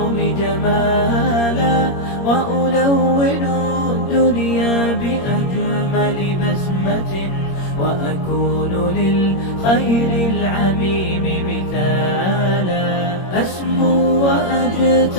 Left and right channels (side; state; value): right; late; 21 ms